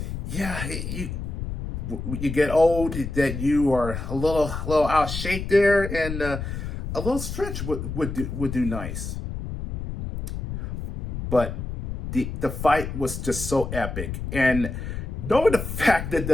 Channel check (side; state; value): left; noise; rumble, 5 dB below the sound